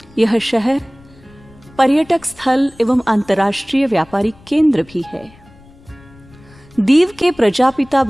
यह शहर पर्यटक स्थल एवं अंतर्राष्ट्रीय व्यापारिक केंद्र भी है। दीव के प्रजापिता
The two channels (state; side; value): noise; left; rumble, 25 dB below the sound